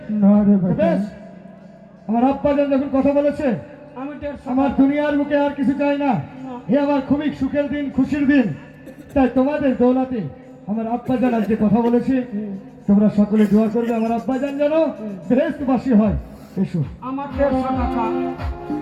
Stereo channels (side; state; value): both; identical; correlation 1.00